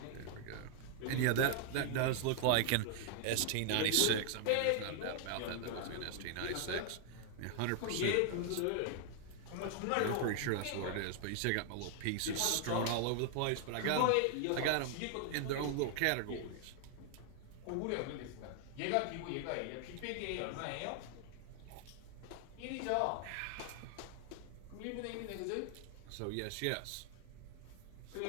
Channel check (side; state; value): both; different; correlation 0.00